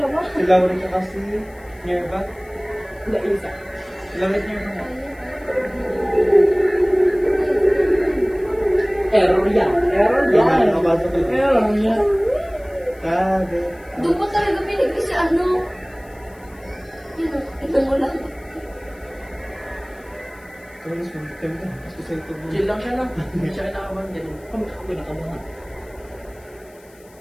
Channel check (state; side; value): noise; left; hiss, 28 dB below the sound